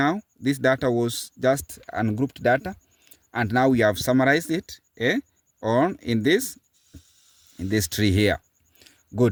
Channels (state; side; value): identical; both; correlation 1.00